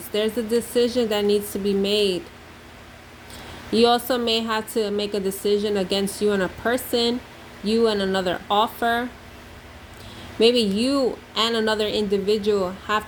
There's a decision that needs to be made. You also may have to make a decision against you and a person, you and another offer. Maybe you and another individual have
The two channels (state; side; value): identical; both; correlation 1.00